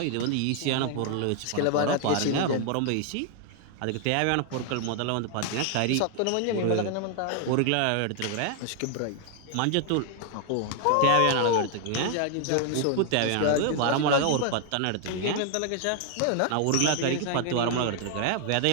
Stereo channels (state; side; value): different; both; correlation 0.00